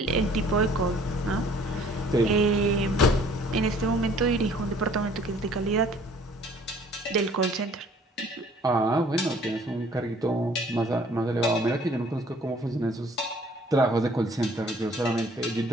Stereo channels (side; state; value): both; normal; correlation 0.56